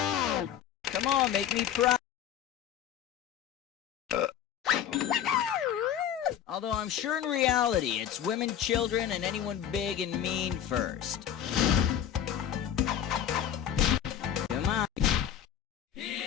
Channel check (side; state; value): right; quieter; 9.9 dB